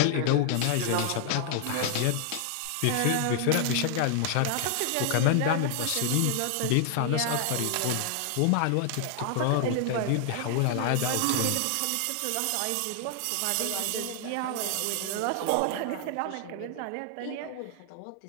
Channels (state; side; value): different; both; correlation 0.00